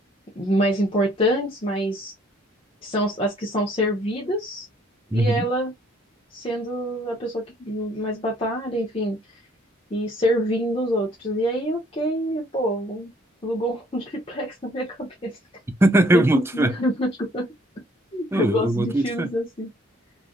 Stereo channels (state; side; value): normal; both; correlation 0.62